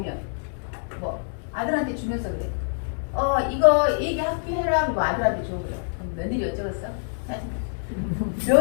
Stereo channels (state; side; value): silent; right; digital silence